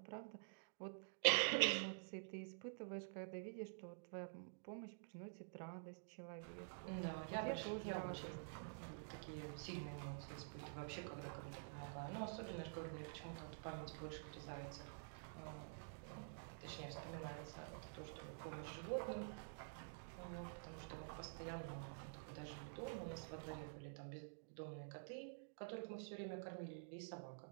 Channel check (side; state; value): left; silent; digital silence